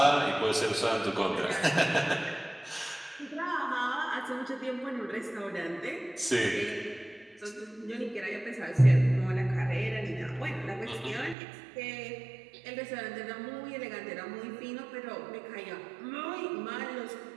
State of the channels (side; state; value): left; drops out; at 11.4 s